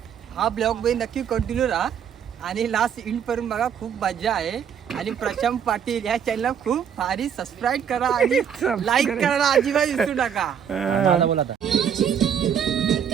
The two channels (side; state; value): left; quieter; 8.1 dB